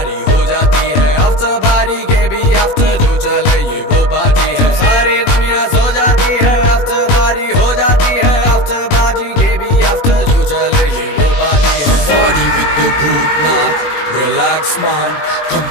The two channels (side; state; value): right; late; 21 ms